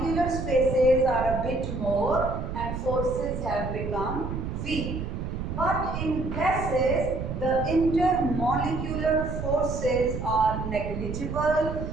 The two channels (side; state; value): right; noise; rumble, 5 dB below the sound